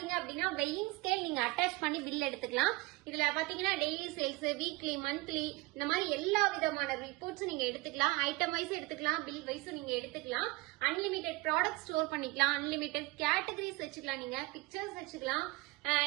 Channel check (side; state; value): left; quieter; 22.9 dB